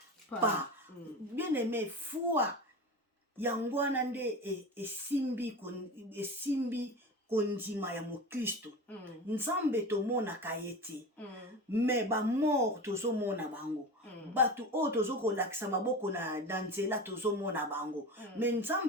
pas. Bien aimé, foi yangwana nde esimbi kondima ya mokristo. Nzambe tomonaka ye te, me bamort tozomona bango. Bato oyo tozokolakisa maboko na nzela tozomona bango, me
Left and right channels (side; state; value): both; normal; correlation 0.29